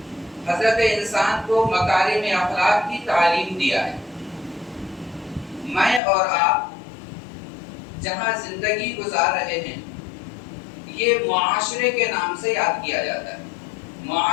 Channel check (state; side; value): drops out; right; at 6.0 s